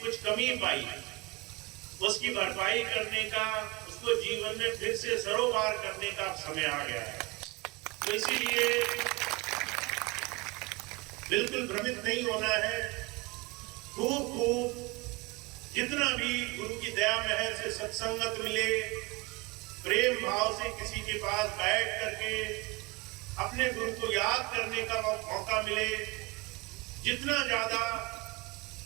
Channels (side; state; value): left; quieter; 25.2 dB